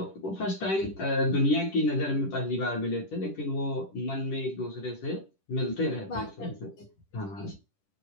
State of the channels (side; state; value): right; late; 10 ms